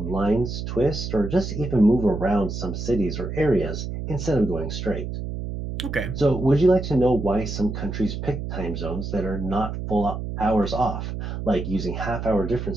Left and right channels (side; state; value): right; noise; hum, 5 dB below the sound